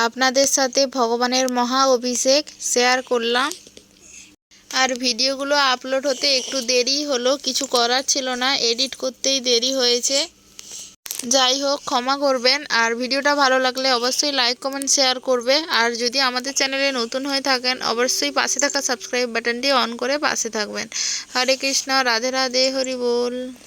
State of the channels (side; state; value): both; identical; correlation 1.00